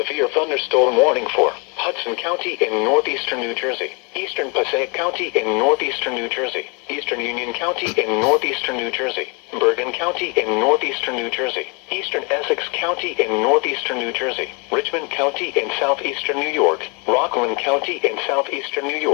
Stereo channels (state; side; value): quieter; right; 32.6 dB